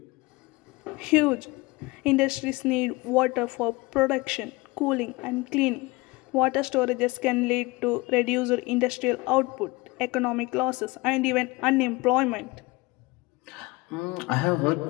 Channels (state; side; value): quieter; right; 23.1 dB